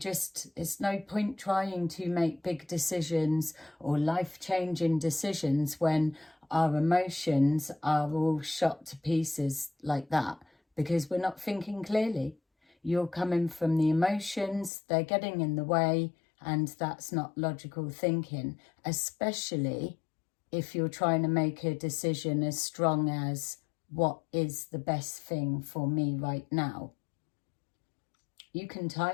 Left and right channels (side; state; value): right; drops out; at 14.7 s